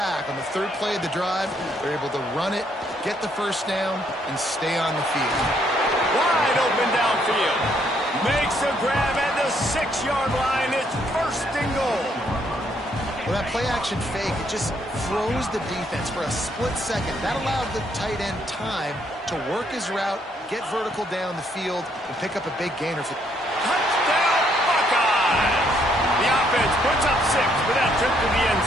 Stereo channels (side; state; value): both; normal; correlation 0.71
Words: on the 3rd play of the drive, they're able to run it, get the 1st down, and stay on the field. Wide open downfield. Makes a grab at the 6-yard line. It's 1st and goal. Well, that play-action fake, it just froze the defense for a split second. That allowed the tight end time to work his route, get vertical down the field, and pick up a big gainer. Touchdown, Buckeyes! The offense puts up 6 with that trip to the end